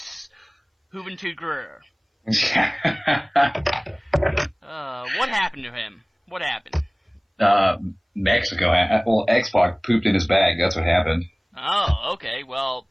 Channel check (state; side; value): identical; both; correlation 1.00